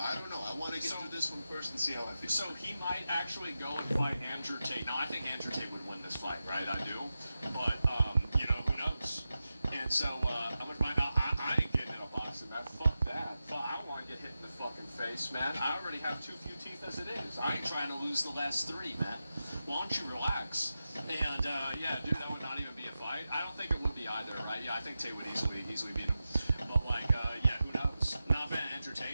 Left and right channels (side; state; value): both; inverted; correlation -0.92